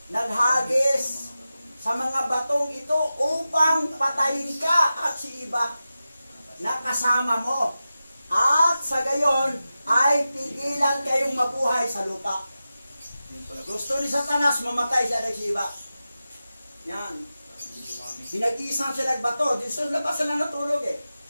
naghagis sa mga batong ito upang patayin ka at si iba na kasama mo. At sa gayon ay pigilan kayong mabuhay sa lupa. Gusto ni Satanas mamatay siya at si iba. Yan. Pinag-iisang siya nagbato. Di sa labas na natulog eh.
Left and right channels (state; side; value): inverted; both; correlation -0.93